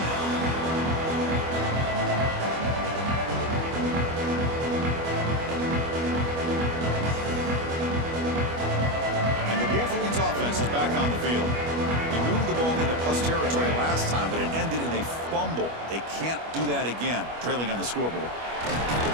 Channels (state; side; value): late; left; 25 ms